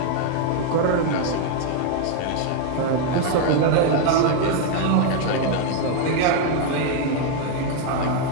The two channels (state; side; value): different; both; correlation 0.00